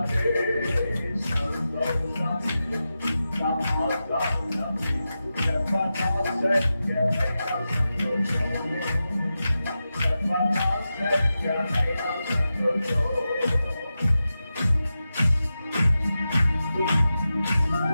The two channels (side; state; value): both; inverted; correlation -0.92